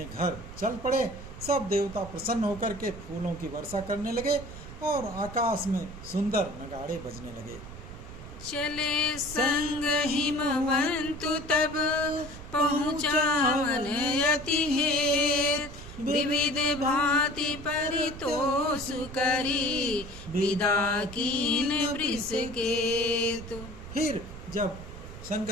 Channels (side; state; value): right; noise; rumble, 13 dB below the sound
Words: घर चल पड़े। सब देवता प्रसन्न होकर के फूलों की वर्षा करने लगे और आकाश में सुंदर नगाड़े बजने लगे। चले संग हिमवंतु तब, पहुँचावन अति हेत। विविध भांति परितोष करी, विदा कीन वृषकेतु। फिर जब